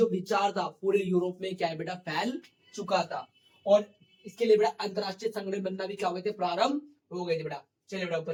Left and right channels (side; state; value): both; identical; correlation 1.00